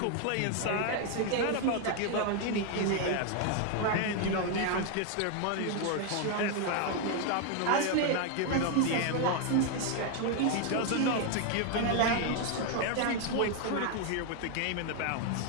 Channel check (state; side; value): different; both; correlation 0.01